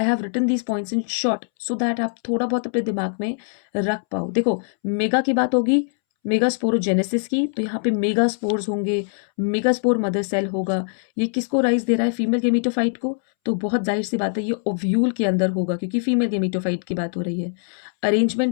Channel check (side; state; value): right; silent; 64 dB below the other